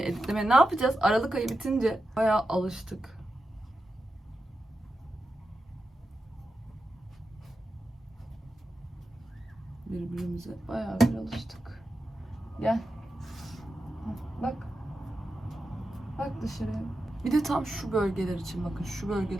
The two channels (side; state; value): both; normal; correlation 0.90